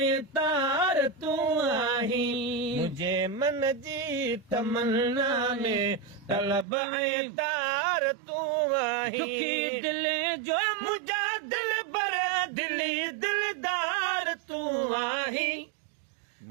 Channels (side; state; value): left; drops out; at 6.7 s